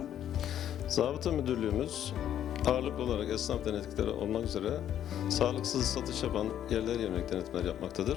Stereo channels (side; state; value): right; quieter; 10.6 dB